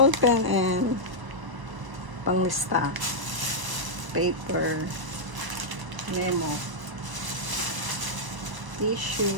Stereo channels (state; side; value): late; left; 1.0 ms